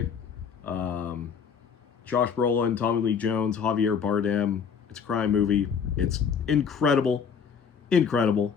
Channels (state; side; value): quieter; right; 6.7 dB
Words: Josh Brolin, Tommy Lee Jones, Javier Bardem. It's a crime movie. It's incredible. Incredible.